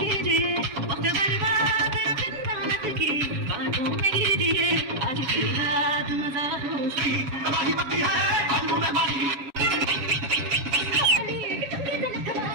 कीजिए, वक्त बर्बाद की बातों में कीजिए। आज की रात मजा उसकी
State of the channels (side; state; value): left; late; 7.4 ms